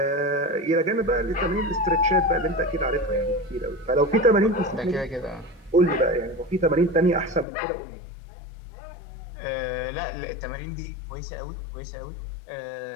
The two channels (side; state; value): right; drops out; at 7.5 s